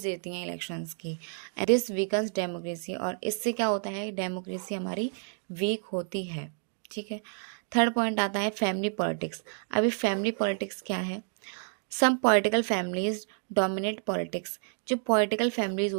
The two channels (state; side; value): silent; left; 58 dB below the other